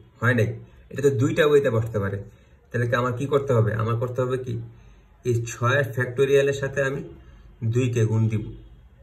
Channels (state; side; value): identical; both; correlation 1.00